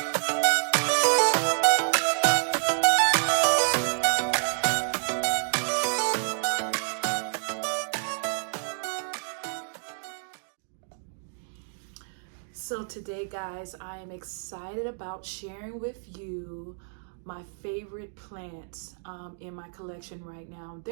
So today guys, I am excited about sharing with you my favorite plants in my collection right now.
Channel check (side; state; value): left; silent; digital silence